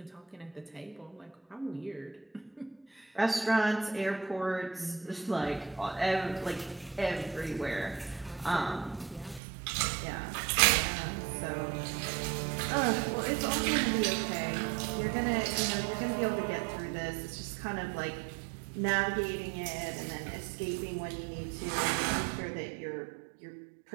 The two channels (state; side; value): drops out; left; at 9.4 s